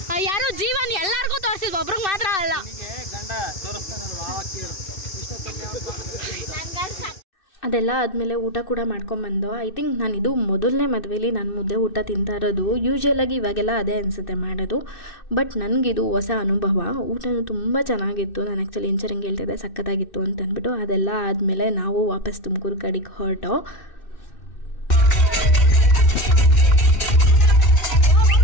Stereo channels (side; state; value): right; late; 2.6 ms